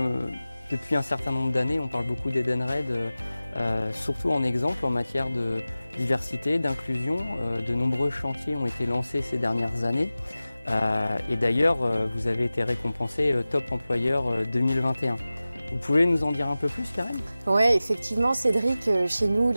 depuis un certain nombre d'années, on parle beaucoup d'Edenred, surtout en exemple en matière de diversité, d'inclusion. De nombreux chantiers ont été lancés ces dernières années. Et d'ailleurs, vous avez été récompensé Top Employeur 2021. Vous pouvez nous en dire un peu plus, Karen? Oui, effectivement, Cédric, chez nous,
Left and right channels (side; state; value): both; inverted; correlation -0.96